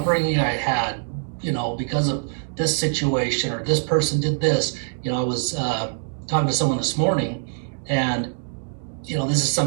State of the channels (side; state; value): left; silent; digital silence